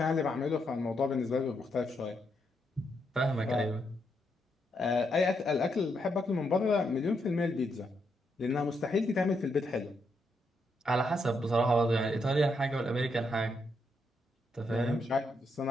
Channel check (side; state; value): both; normal; correlation 0.79